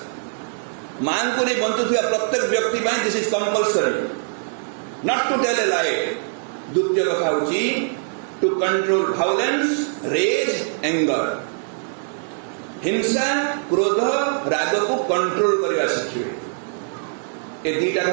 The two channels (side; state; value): left; silent; 61 dB below the other